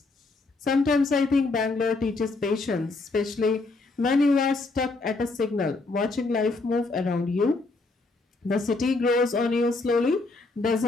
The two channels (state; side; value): quieter; right; 3.5 dB